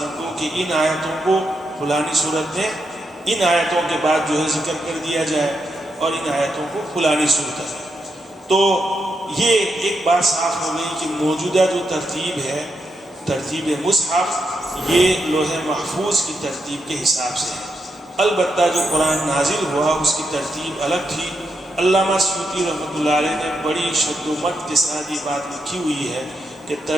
کو کہ ان آیتوں کو فلانی صورت میں ان آیتوں کے بعد جو ہے ذکر کر دیا جائے، اور ان آیتوں کو فلانی صورت میں۔ تو یہ ایک بات صاف ہو گئی کہ موجودہ جو ترتیب ہے، ترتیب مصحف، یہ لوح محفوظ کی ترتیب کے حساب سے ہے۔ البتہ جو قرآن نازل ہوا اس کی ترتیب الگ تھی۔ علامہ سیوطی رحمۃ اللہ علیہ نے بڑی شد و مت کے ساتھ یہ بات لکھی ہوئی ہے کہ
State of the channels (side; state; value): both; normal; correlation 0.83